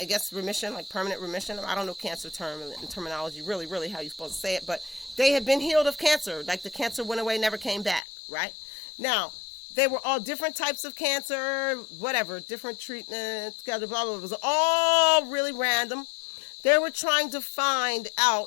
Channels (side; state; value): right; drops out; at 8.0 s